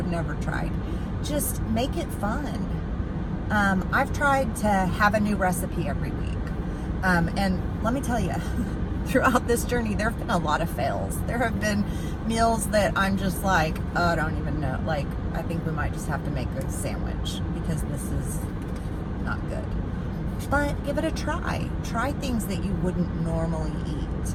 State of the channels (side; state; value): both; identical; correlation 1.00